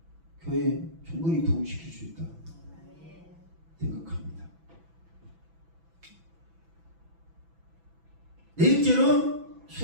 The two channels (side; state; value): left; late; 6.0 ms